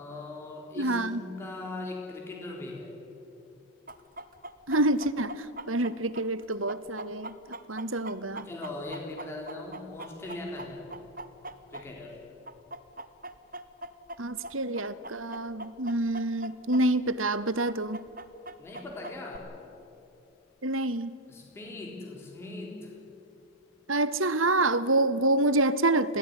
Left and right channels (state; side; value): normal; both; correlation -0.01